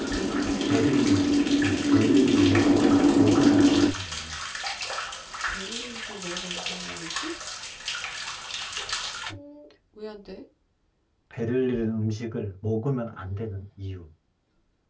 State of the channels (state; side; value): identical; both; correlation 1.00